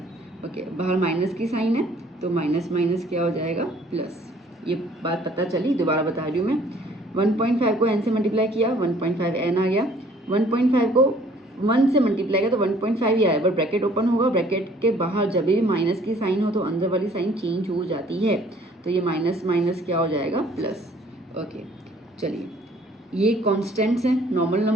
ओके, बाहर माइनस की साइन है तो माइनस माइनस क्या हो जाएगा प्लस। ये बात पता चली, दोबारा बता रही हूँ मैं। 1.5 को n से मल्टीप्लाई किया, 1.5 n आ गया। 1.5 को 1 से मल्टीप्लाई किया तो 1.5 ही आया, पर ब्रैकेट ओपन होगा, ब्रैकेट के बाहर जब भी माइनस की साइन हो तो अंदर वाली साइन चेंज हो जाती है। तो ये माइनस माइनस क्या हो जाएगा प्लस। ओके चलिए, ये कॉन्स्टेंट्स हैं, नॉर्मल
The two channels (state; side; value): normal; both; correlation 0.58